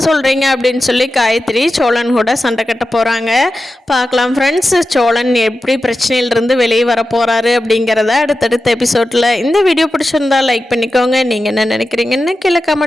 சொல்கிறீங்க அப்படின்னு சொல்லி காயத்ரி சோழன் கூட சண்டை கட்ட போகிறாங்க. பார்க்கலாம் ஃப்ரெண்ட்ஸ், சோழன் எப்படி பிரச்சனையிலிருந்து வெளியே வர போகிறாரு அப்படிங்கிறத அடுத்தடுத்த எபிசோடில். இந்த வீடியோ பிடிச்சிருந்தா லைக் பண்ணிக்கோங்க. நீங்கள் என்ன நினைக்கிறீங்கன்னு கீழே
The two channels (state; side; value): normal; both; correlation 0.92